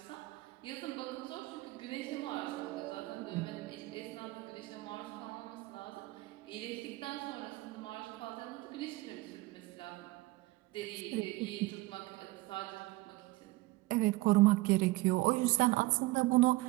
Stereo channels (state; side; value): quieter; left; 20.2 dB